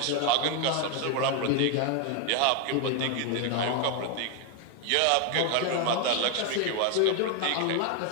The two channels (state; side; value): different; both; correlation 0.01